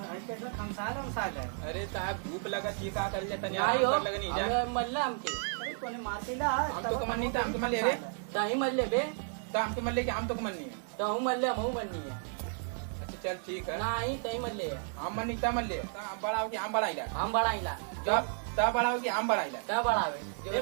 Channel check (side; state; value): left; silent; 56 dB below the other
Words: आई कैसा खमसाल है। अरे साहब धूप लगा चीका कर लेता नहीं आई हो लगा नहीं जा। अबे मल्ला हमके। अरे तूने मार देला। हम तो कमन नहीं था, हम तो मल्ले रे। ताही मल्ले बे। तो हम तो मल्ले के हम तो कमन नहीं है। तो हूं मल्ले हम मन्नी है। अच्छा चल ठीक है। नहीं तही मल्ले है। हम मन नहीं था मल्ले। हम बड़ा हो के हम बड़ा इला। हम बढ़ाइला। तब बड़ा हो के हम बड़ा इला। क्या बढ़ावे? ए